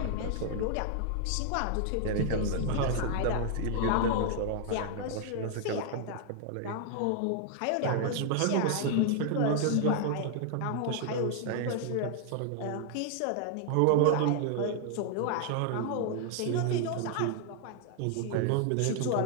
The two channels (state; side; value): different; both; correlation 0.00